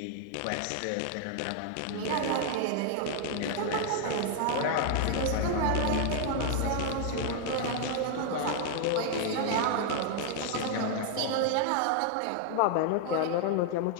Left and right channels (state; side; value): different; both; correlation 0.00